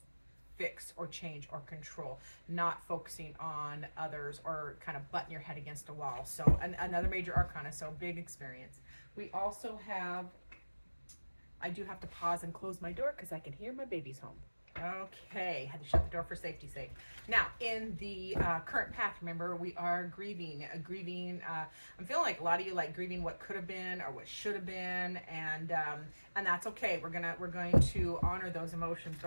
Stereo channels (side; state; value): both; inverted; correlation -1.00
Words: fix or change or control, not focusing on others or kind of butting your head against a wall. So another major arcana, so big experience. We also have, I do have to pause and close my door because I can hear my babies home. Okay, had to shut the door for safety's sake. Now, in the current path, remember, we are grieving. I'm feeling like a lot of you like grieving what could have been or what should have been, and that's okay. We're going to honor those emotions,